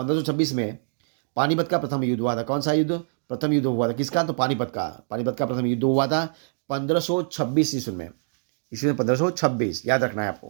में पानीपत का प्रथम युद्ध हुआ था। कौन सा युद्ध? प्रथम युद्ध हुआ था किसका? तो पानीपत का। पानीपत का प्रथम युद्ध हुआ था 1526 ईस्वी में। ईस्वी में 1526 याद रखना है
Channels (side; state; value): left; silent; digital silence